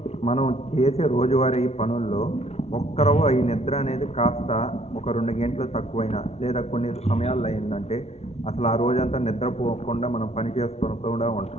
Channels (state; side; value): late; right; 0.31 ms